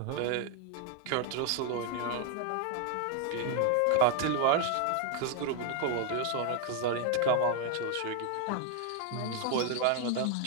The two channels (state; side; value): different; both; correlation 0.00